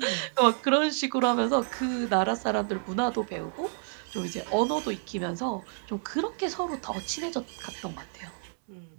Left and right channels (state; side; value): silent; left; 58 dB below the other